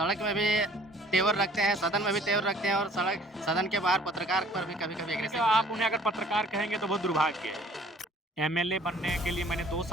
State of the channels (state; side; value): normal; both; correlation 0.54